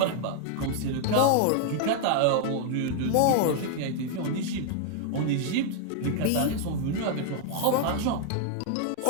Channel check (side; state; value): both; different; correlation 0.00